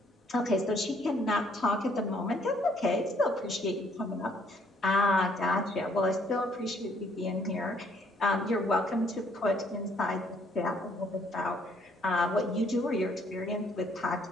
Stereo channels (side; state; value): both; normal; correlation 0.66